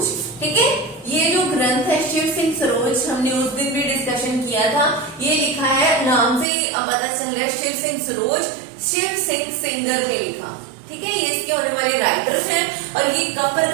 ठीक है। ये जो ग्रंथ है शिव सिंह सरोज, हमने उस दिन भी डिस्कशन किया था। ये लिखा है, नाम से पता चल रहा है शिव सिंह सरोज, शिव सिंह सिंगर ने लिखा, ठीक है। ये इसके होने वाले राइटर हैं और ये कब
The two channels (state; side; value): drops out; left; at 6.5 s